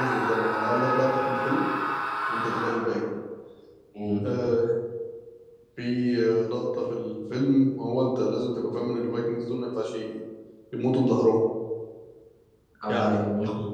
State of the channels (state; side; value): identical; both; correlation 1.00